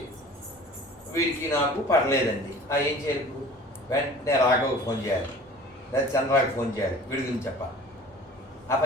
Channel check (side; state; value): both; normal; correlation 0.44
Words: వీడికి నాకు పడలేదండి, ఏం చేయాలి? వెంటనే రాఘవకు ఫోన్ చేయాలి, లేదా చంద్రాకి ఫోన్ చేయాలి, వీడి గురించి చెప్పాలి. ఆ